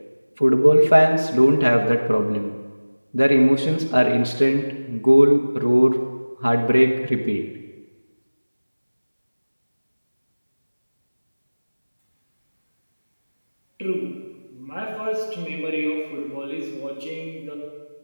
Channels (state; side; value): inverted; both; correlation -1.00